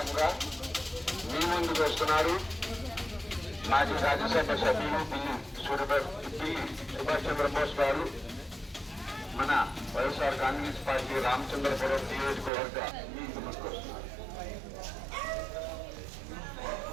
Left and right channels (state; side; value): drops out; left; at 12.5 s